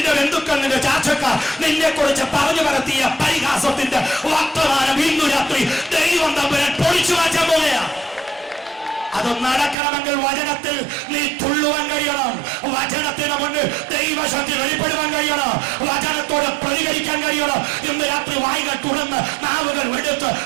ബന്ധുക്കൾ, നിന്റെ ചാച്ചക്കാർ നിന്നെ കുറിച്ച് പറഞ്ഞു പരത്തിയ പരിഹാസത്തിന്റെ വർത്തമാനം ഇന്നു രാത്രി ദൈവം തമ്പുരാൻ പൊളിച്ചു മാറ്റാൻ പോകുകയാ. അത് നടക്കണമെങ്കിൽ വചനത്തിൽ നീ തുള്ളുവാൻ കഴിയണം. വചനത്തിന് മുന്നിൽ ദൈവശക്തി വെളിപ്പെടുവാൻ കഴിയണം. വചനത്തോട് പ്രതികരിക്കാൻ കഴിയണം. ഇന്ന് രാത്രി വായികൾ തുറന്ന് നാവുകൾ എടുത്ത്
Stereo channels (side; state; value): left; drops out; at 9.8 s